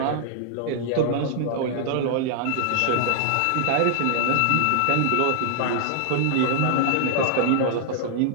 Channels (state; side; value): different; both; correlation 0.00